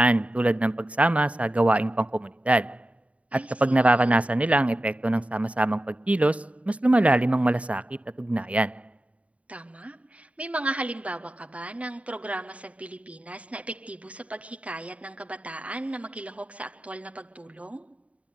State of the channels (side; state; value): left; late; 0.066 ms